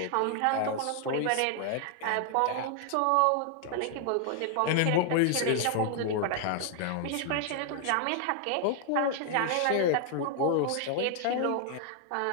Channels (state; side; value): different; both; correlation 0.00